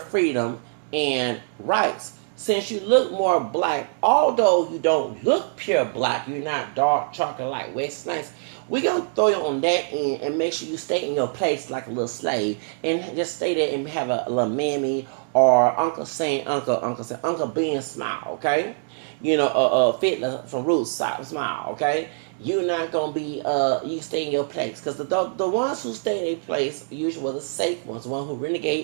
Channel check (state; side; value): silent; left; digital silence